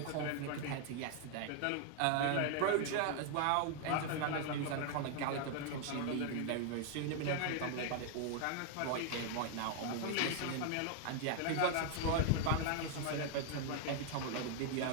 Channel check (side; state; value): both; different; correlation 0.00